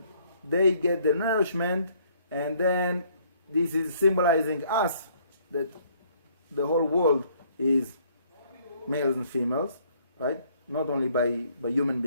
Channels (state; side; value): inverted; both; correlation -0.63